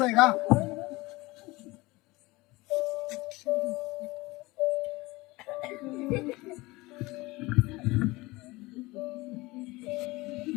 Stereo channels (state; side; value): quieter; right; 21.7 dB